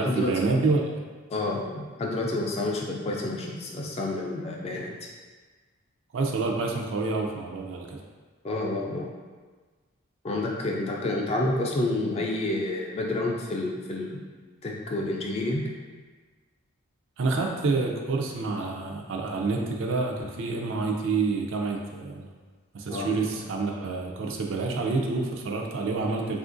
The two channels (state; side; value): normal; both; correlation 0.48